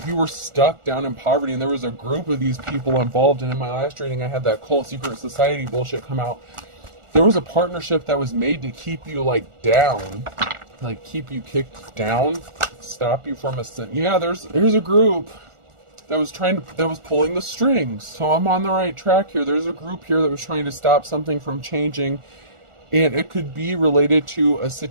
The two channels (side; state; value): left; late; 1.4 ms